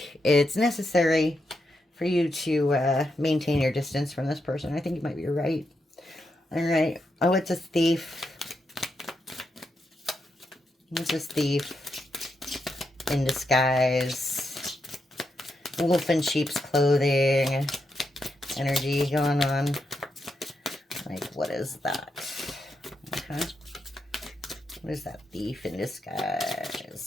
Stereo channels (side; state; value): both; normal; correlation 0.83